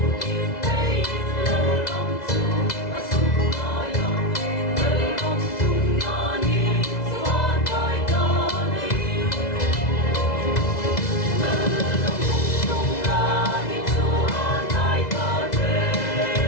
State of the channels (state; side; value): late; right; 2.0 ms